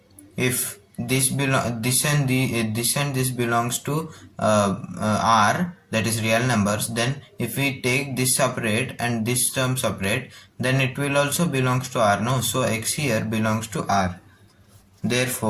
if this and this belongs to R, that is real numbers, then if we take this separate and this term separate, then it will also belongs to R, no? So x here belongs to R.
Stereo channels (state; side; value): identical; both; correlation 1.00